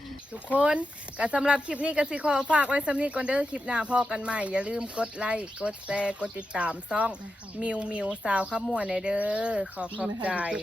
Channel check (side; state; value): both; normal; correlation 0.89